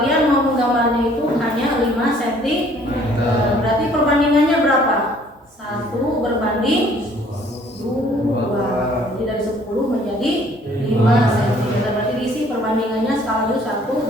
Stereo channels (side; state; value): both; normal; correlation 0.58